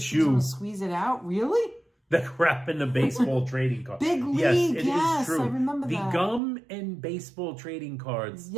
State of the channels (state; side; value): drops out; left; at 6.4 s